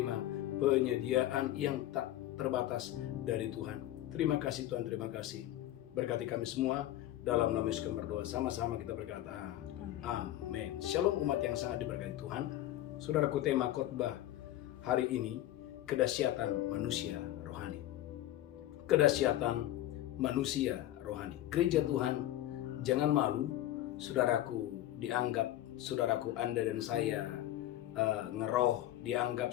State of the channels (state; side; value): quieter; right; 13.9 dB